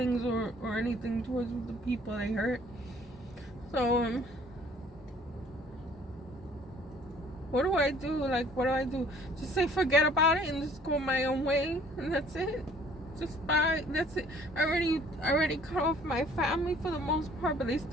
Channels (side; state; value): both; normal; correlation 0.56